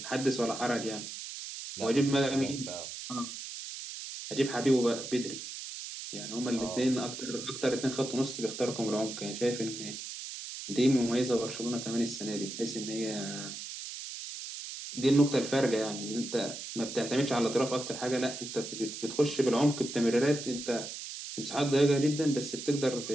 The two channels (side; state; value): right; noise; hiss, 9 dB below the sound